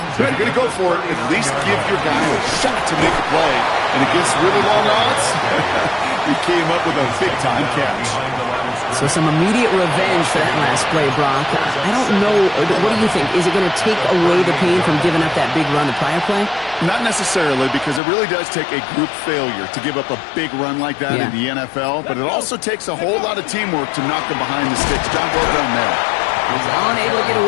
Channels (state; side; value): drops out; right; at 18.0 s